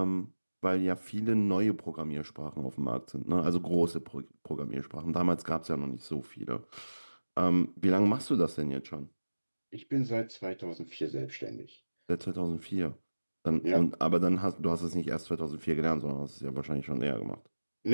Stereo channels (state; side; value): inverted; both; correlation -1.00